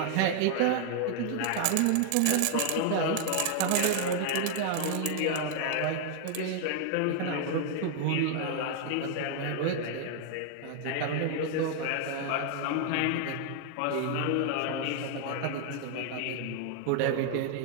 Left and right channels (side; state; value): both; different; correlation 0.00